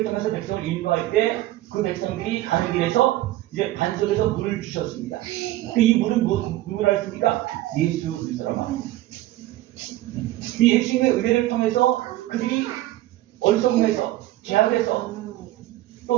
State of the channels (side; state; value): left; quieter; 16.0 dB